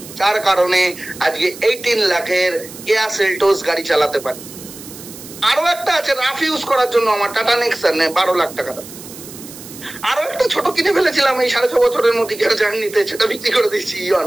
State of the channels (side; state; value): right; noise; hiss, 15 dB below the sound